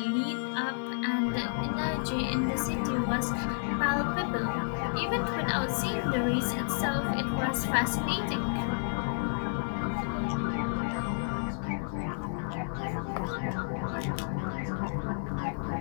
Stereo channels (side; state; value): right; silent; 55 dB below the other